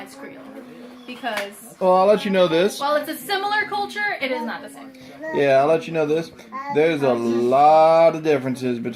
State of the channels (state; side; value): identical; both; correlation 1.00